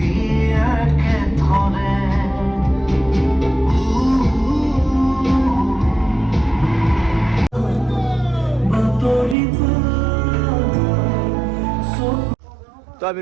একেথৰে বাতৰি তো আমি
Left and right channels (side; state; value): left; drops out; at 9.3 s